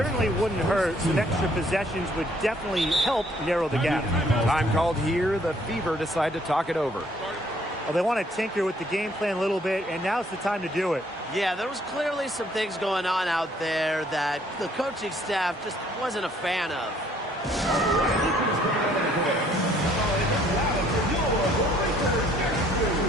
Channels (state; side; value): normal; both; correlation 0.63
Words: wouldn't hurt. Some extra possessions would definitely help narrow the gap. Time called here. The Fever decide to talk it over. Well, they want to tinker with the game plan a little bit, and now's the time to do it. Yeah, there was clearly some things going on out there that the coaching staff just wasn't a fan of.